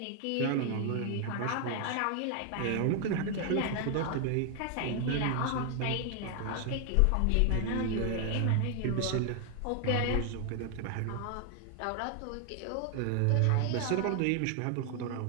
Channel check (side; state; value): both; different; correlation 0.00